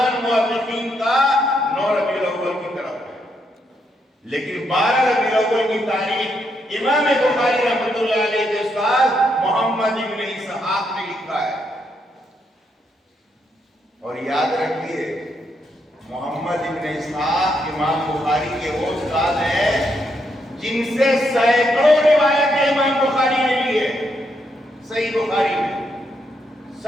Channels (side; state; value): both; normal; correlation 0.78